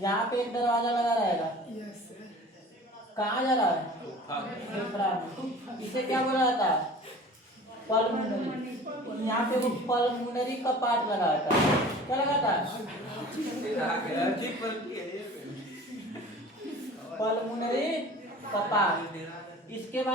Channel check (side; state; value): both; normal; correlation 0.42